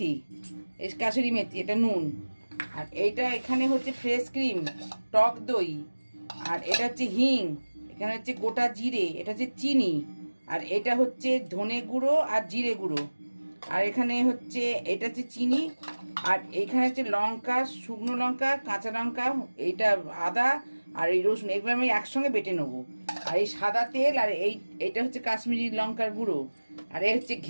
মেথি, এটা নুন। আর এইটা এখানে হচ্ছে ফ্রেশ ক্রিম, টক দই, আর এটা হচ্ছে হিং, এখানে হচ্ছে গোটা জিরে, এটা হচ্ছে চিনি, আর এটা হচ্ছে ধনে গুঁড়ো আর জিরে গুঁড়ো, আর এখানে হচ্ছে এটা হচ্ছে চিনি, আর এইখানে হচ্ছে লঙ্কা, শুকনো লঙ্কা, কাঁচা লঙ্কা, এইটা আদা, আর এই রসুন, এগুলো আমি একসঙ্গে বেটে নেবো। আর এই সাদা তেল, আর এইটা হচ্ছে কাশ্মীরি লঙ্কার গুঁড়ো, আর এই হচ্ছে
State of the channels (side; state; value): both; inverted; correlation -1.00